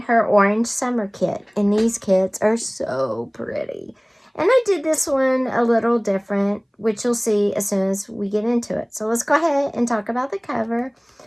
her Orange Summer kit. And these kits are so pretty. And I did this one a little different, which you'll see as soon as we get into it. So let's go ahead and talk about the cover.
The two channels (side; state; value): both; identical; correlation 1.00